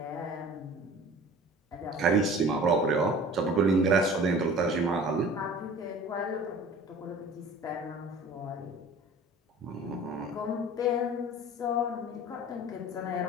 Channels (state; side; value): normal; both; correlation 0.43